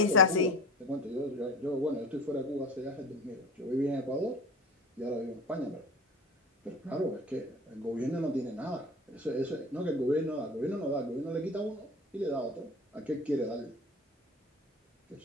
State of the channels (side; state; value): both; normal; correlation 0.36